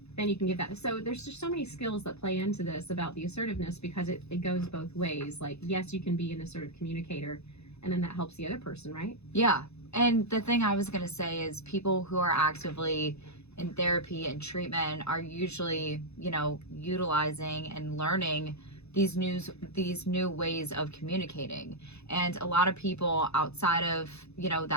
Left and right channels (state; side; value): late; right; 0.80 ms